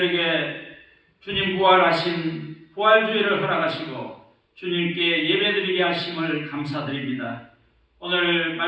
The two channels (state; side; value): identical; both; correlation 1.00